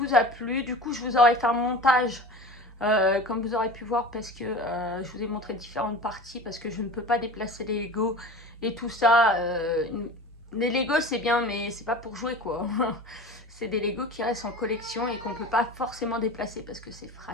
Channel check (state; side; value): normal; both; correlation 0.35